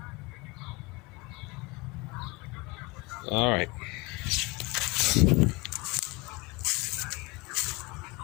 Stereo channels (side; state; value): right; quieter; 25.7 dB